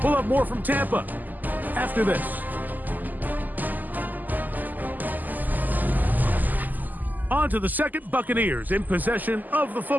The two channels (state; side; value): late; left; 0.084 ms